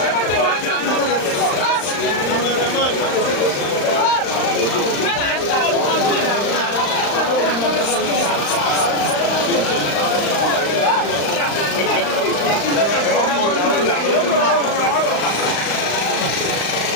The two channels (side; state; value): right; late; 35 ms